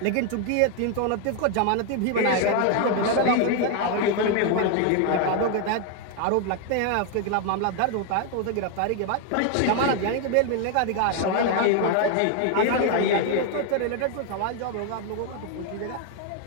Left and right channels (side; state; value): both; different; correlation 0.01